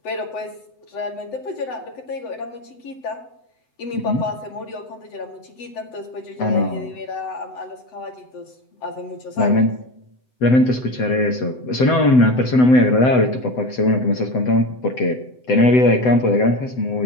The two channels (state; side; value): late; right; 7.9 ms